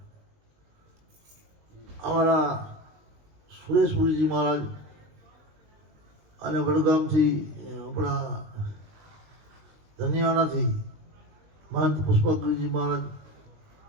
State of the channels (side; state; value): left; late; 20 ms